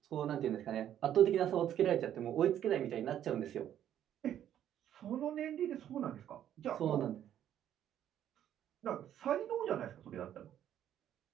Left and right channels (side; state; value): left; quieter; 10.8 dB